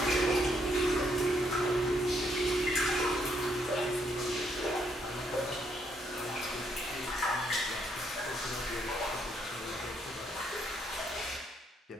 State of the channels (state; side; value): normal; both; correlation 0.73